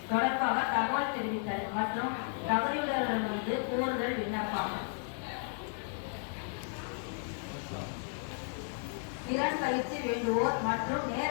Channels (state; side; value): silent; right; 55 dB below the other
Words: தொடர்பாக தகவல் தெரிவித்தல் மற்றும் தகுதியுள்ளவர்களிடமிருந்து கூறுதல் விண்ணப்பம். திறன் பயிற்சி வேண்டுவோர் மற்றும்